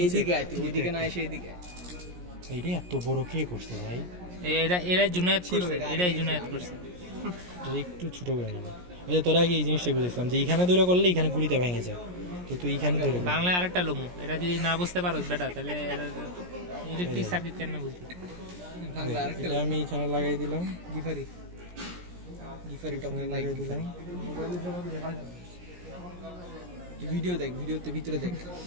এইদিকে আয় তুই ওইদিকে না এসে এইদিকে আয়। এইটা এত বড় কে করছে ভাই? এরা জুনায়েদ ছিল করছে, এটা, এরাই আগে জুনায়েদ করছে। এটা একটু ছোট করে নেব। ওই যে তোরা আগে এই জিনিসটাই বুঝেছিলাম যে এখানে দূরে করলে এখানে গুড়িতে ভেঙে যায়, তো তুই এখানে দূরে কর। বাংলায় আরেকটা লমু, এরা যদি না বুঝতে পারো বেটা তাহলে ইলেকট্রিক সার্কিট কেন বুঝবি? বাংলা আরেকটা এটা আমি এখানে লাগাই দিলাম, গিফারি গিফারি টপ এখানে লাগাই দিলাম। ভিডিও দেখ, ভিডিওতে ভিতরে দেখ,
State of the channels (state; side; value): late; left; 17 ms